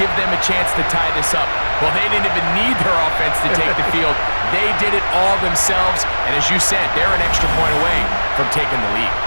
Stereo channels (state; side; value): inverted; both; correlation -1.00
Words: give them a chance to tie this up. Well, they didn't even need their offense to take the field. They did it all themselves, and as you said, they're an extra point away from taking the lead.